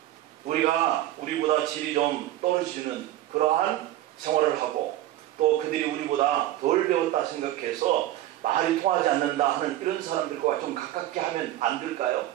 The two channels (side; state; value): left; quieter; 14.2 dB